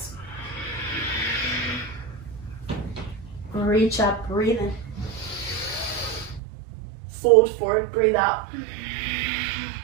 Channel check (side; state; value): left; drops out; at 6.4 s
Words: Reach up, breathe in. Fold forward, breathe out.